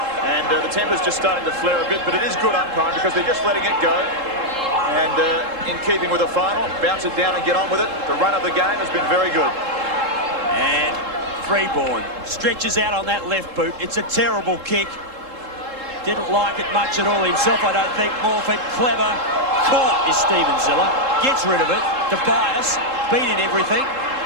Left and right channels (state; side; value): late; left; 3.7 ms